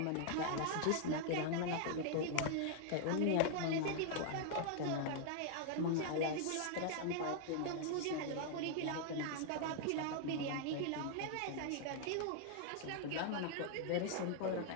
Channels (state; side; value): different; both; correlation 0.00